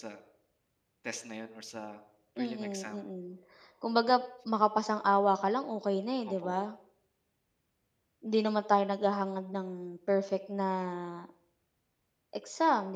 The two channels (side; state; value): both; identical; correlation 1.00